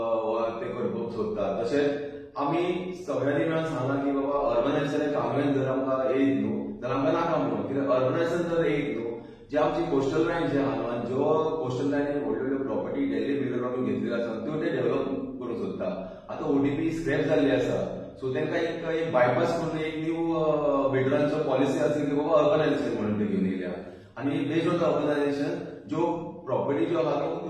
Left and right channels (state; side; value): identical; both; correlation 1.00